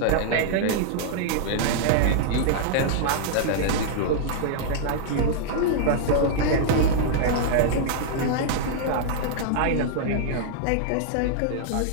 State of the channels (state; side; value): different; both; correlation -0.01